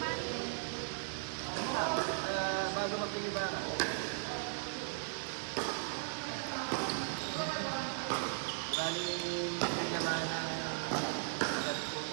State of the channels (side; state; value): left; silent; digital silence